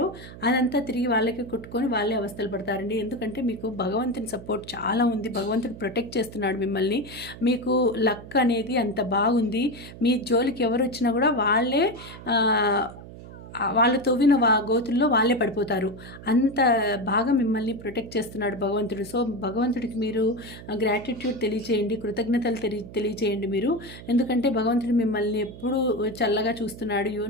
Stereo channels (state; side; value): noise; right; hum, 15 dB below the sound